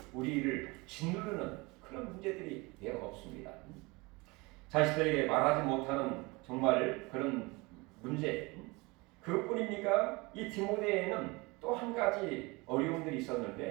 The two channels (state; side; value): quieter; left; 25.2 dB